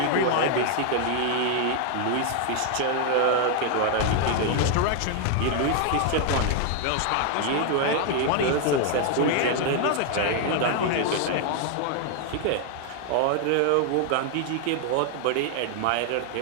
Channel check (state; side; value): different; both; correlation 0.00